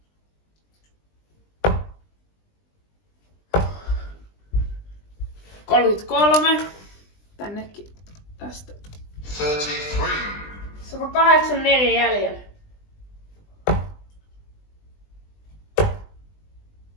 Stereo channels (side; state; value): right; late; 20 ms